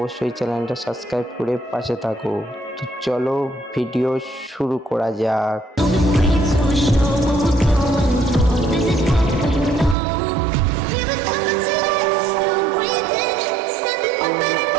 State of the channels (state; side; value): drops out; left; at 10.0 s